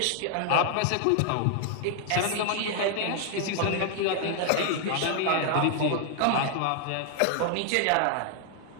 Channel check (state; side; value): different; both; correlation 0.00